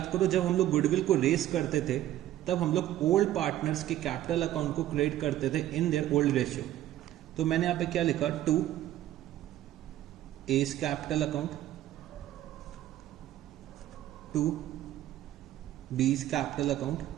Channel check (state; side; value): quieter; left; 13.4 dB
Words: करो जब हम लोग गुडविल को रेस करते थे तब हम लोग ओल्ड पार्टनर्स के कैपिटल अकाउंट को क्रिएट करते थे इन देयर ओल्ड रेशियो। तो मैंने यहाँ पे क्या लिखा, 2 A's capital account, 2 B's capital account,